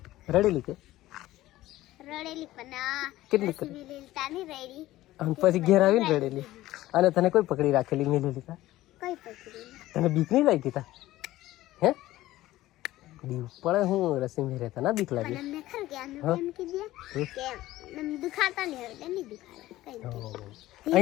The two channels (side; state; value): right; quieter; 16.0 dB